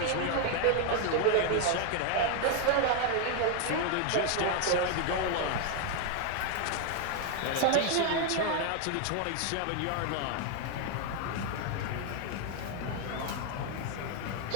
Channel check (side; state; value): both; different; correlation 0.01